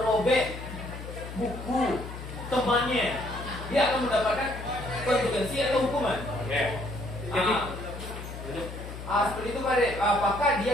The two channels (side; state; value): left; noise; hum, 10 dB below the sound